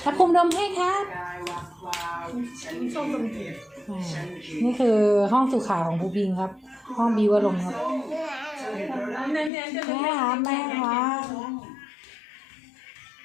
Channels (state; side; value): drops out; right; at 9.5 s